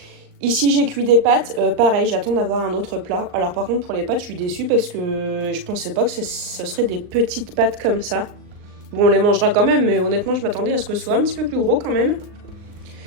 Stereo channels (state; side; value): late; left; 39 ms